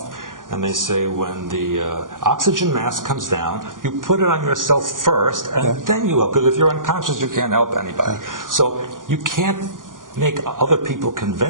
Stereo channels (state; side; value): late; left; 0.89 ms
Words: and they say when the oxygen mask comes down, you put it on yourself first, and then you help. Because if you're unconscious, you can't help anybody. So you can't make other people